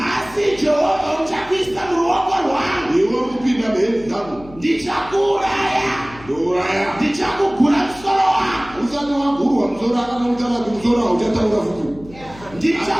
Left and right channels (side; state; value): left; noise; hum, 20 dB below the sound